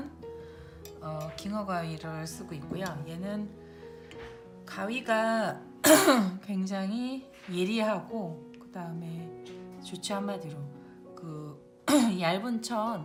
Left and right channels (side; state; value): both; identical; correlation 1.00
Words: 깅어 가위를 쓰고 있고요. 얘는 가위가 굉장히 예리하고 그 다음에 좋지, 한마디로 그 얇은